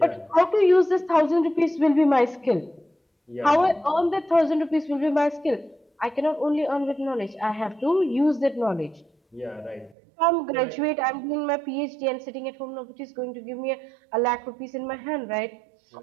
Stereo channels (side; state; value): left; drops out; at 10.0 s